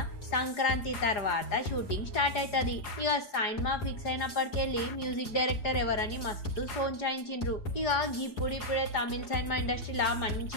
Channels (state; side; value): late; right; 4.8 ms